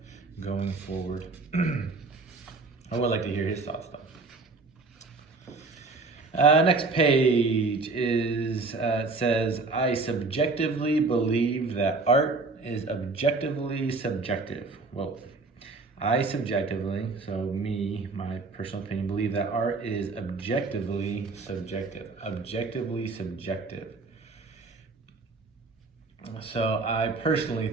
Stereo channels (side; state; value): left; quieter; 3.8 dB